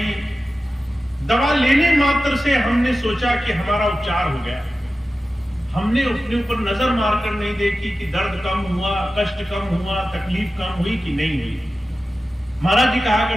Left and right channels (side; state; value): both; normal; correlation 0.94